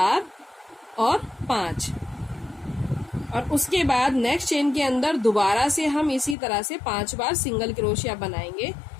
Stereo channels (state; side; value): drops out; right; at 6.4 s